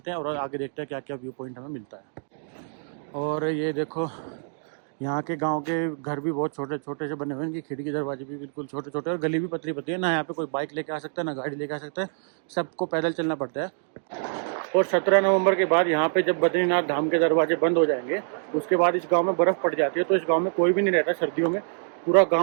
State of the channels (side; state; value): left; silent; digital silence